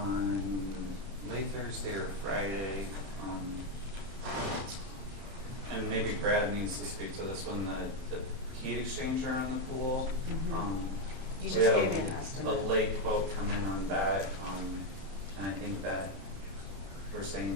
late Thursday or Friday, and maybe Brad needs to speak to this one, the heat exchanger on the pool. You We just had gave me an estimate. a late quote come in on that, and I think that we're saying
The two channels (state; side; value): late; left; 31 ms